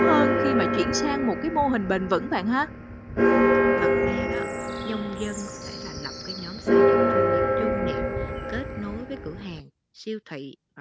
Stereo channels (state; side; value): identical; both; correlation 1.00